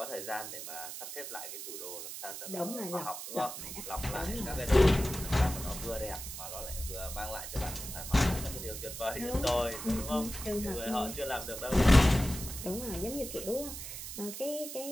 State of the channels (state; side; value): noise; right; hiss, 8 dB below the sound